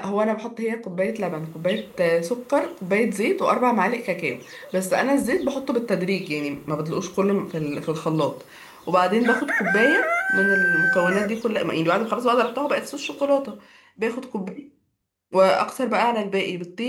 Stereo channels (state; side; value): identical; both; correlation 1.00